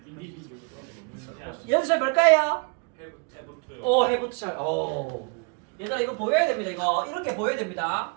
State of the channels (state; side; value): quieter; left; 36.1 dB